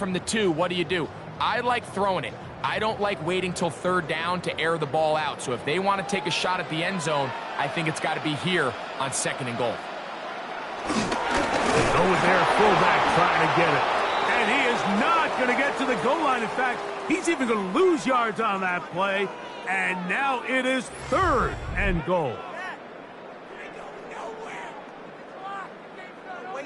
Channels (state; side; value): identical; both; correlation 1.00